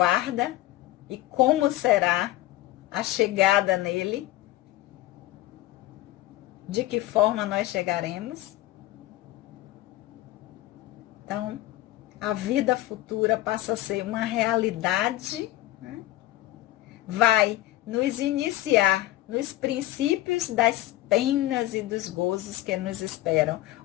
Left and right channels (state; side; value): quieter; right; 16.3 dB